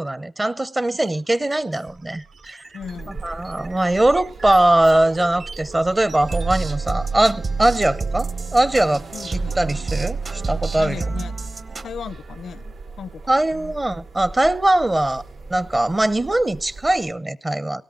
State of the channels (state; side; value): normal; both; correlation 0.98